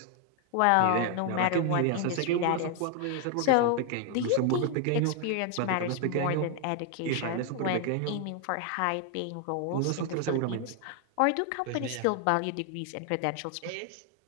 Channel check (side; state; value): both; different; correlation 0.00